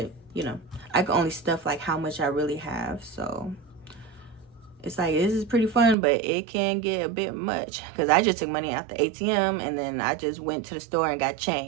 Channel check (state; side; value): drops out; left; at 6.0 s